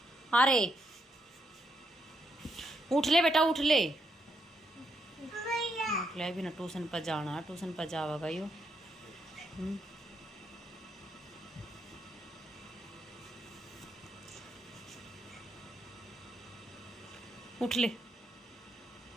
अरे उठ ले बेटा उठ ले। भी ना ट्यूशन पर जाना, ट्यूशन पर जाएगा यो। उठ ले।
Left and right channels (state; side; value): normal; both; correlation 0.78